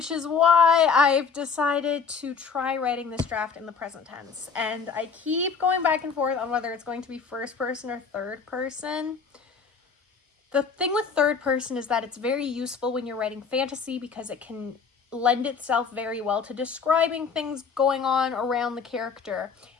is why I've decided to try writing this draft in the present tense. And I keep going back and forth on whether it's going to be first person or third person. The thing with third person is that it's very useful when you're writing fantasy because it can lend itself very well to describing things going on around the character.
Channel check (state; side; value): quieter; right; 5.6 dB